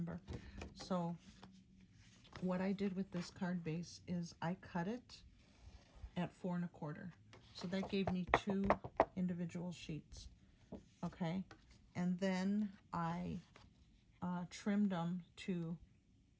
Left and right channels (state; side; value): identical; both; correlation 1.00